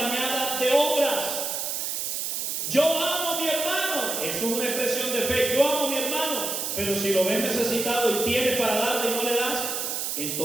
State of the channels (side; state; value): right; noise; hiss, 2 dB below the sound